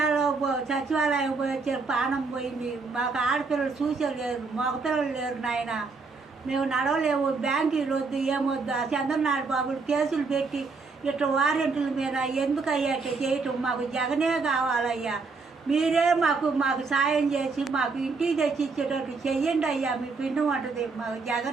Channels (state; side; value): quieter; left; 4.3 dB